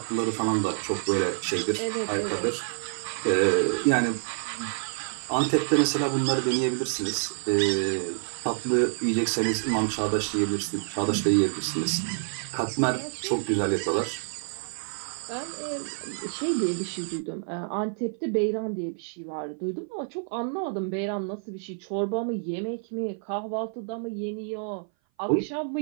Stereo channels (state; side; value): silent; left; 57 dB below the other